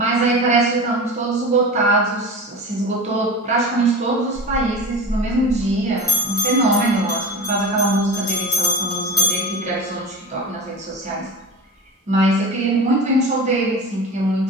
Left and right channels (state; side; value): normal; both; correlation 0.29